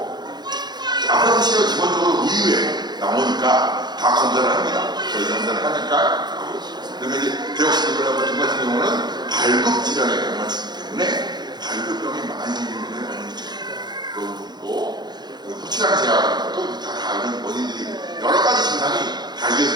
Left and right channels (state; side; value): late; left; 0.21 ms